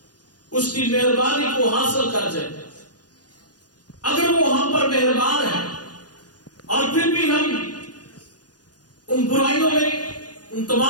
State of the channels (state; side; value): late; right; 0.69 ms